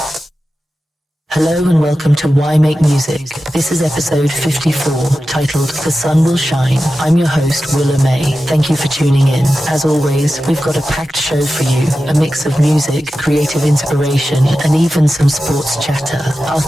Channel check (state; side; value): normal; both; correlation 0.93